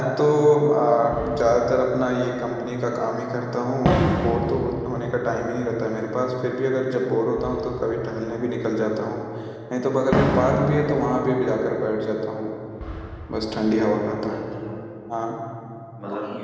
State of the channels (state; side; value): identical; both; correlation 1.00